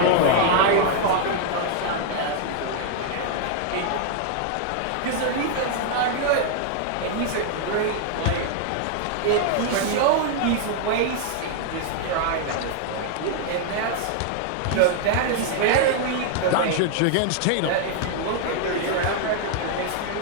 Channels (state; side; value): different; both; correlation 0.00